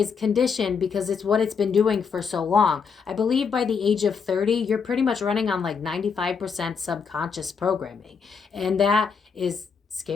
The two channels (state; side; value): quieter; right; 5.9 dB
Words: conditioned because it's what it's been doing for so long. I believe by the age of 30, you're pretty much running on like 95% subconscious programming. And that is